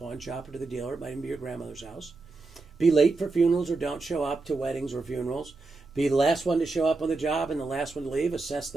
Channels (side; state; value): left; quieter; 3.7 dB